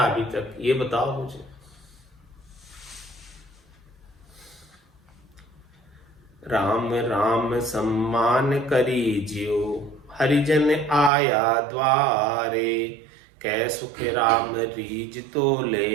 अभी तक, ये बताओ मुझे। राम राम सम्मान करी जियो, हरिजन आया द्वारे, कै सुख राम रीज तो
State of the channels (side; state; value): left; drops out; at 11.1 s